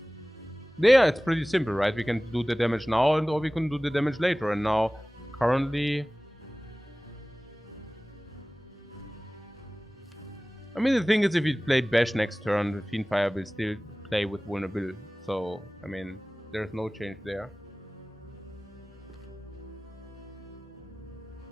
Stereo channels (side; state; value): both; normal; correlation 0.98